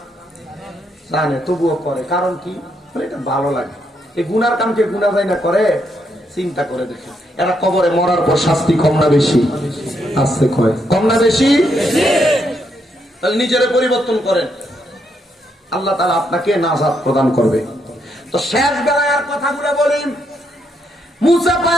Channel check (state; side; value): normal; both; correlation 0.77